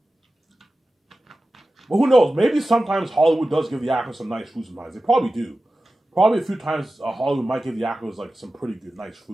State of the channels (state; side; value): normal; both; correlation 0.95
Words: But who knows? Maybe sometimes Hollywood does give the actors some nice food sometimes. They probably do. Probably a few times Hollywood might give the actors like some pretty good, nice